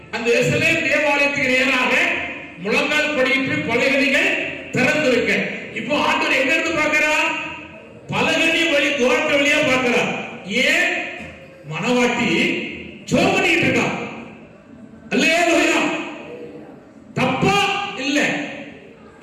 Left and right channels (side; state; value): both; identical; correlation 1.00